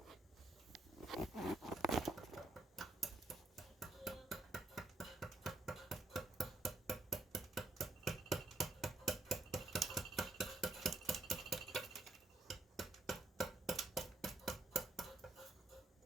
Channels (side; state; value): left; quieter; 3.2 dB